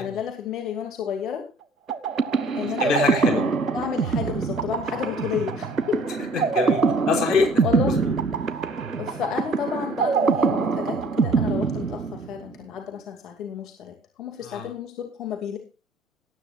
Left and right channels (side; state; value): both; normal; correlation 0.54